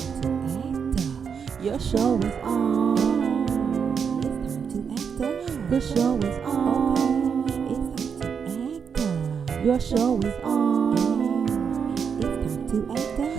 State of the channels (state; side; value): quieter; left; 6.7 dB